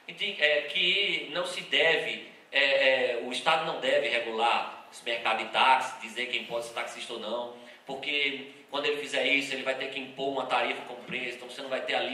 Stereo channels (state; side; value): identical; both; correlation 1.00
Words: que não se deve, o Estado não deve regular esse mercado de táxi, dizer quem pode ser taxista ou não, porque quando ele fizer isso, ele vai ter que impor uma tarifa com preço, então você não vai ter a